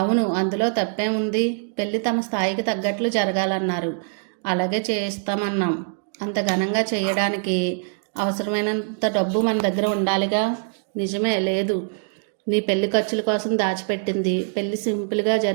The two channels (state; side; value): silent; left; digital silence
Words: అందులో తప్పేముంది? పెళ్లి తమ స్థాయికి తగ్గట్లు జరగాలన్నారు. అలాగే చేస్తామన్నాం. అంత ఘనంగా చేయడానికి అవసరమైనంత డబ్బు మన దగ్గర ఉండాలిగా. నిజమే, లేదు. నీ పెళ్లి ఖర్చుల కోసం దాచిపెట్టింది పెళ్లి సింపుల్గా